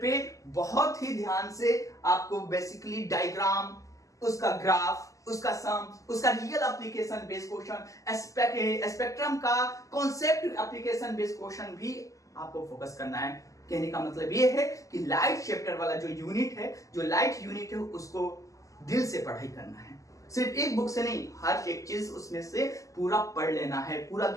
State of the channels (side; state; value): right; late; 0.16 ms